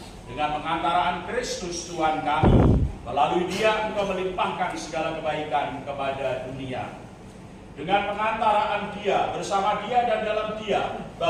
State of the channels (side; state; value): both; identical; correlation 1.00